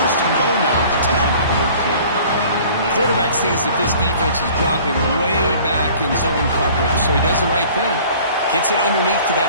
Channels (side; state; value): both; inverted; correlation -0.49